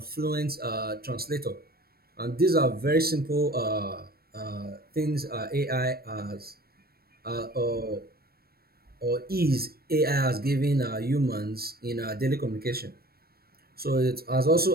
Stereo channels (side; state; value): left; late; 0.44 ms